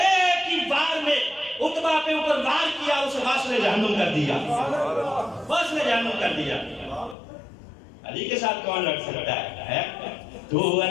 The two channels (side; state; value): right; drops out; at 7.2 s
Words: ہی بار میں عتبہ پہ اوپر وار کیا، اسے واصل جہنم کر دیا، واصل جہنم کر دیا. علی کے ساتھ کون لڑ سکتا ہے؟ تو